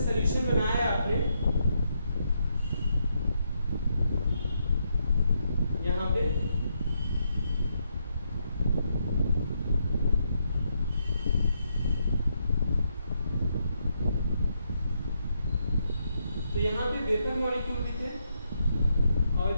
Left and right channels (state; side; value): inverted; both; correlation -0.79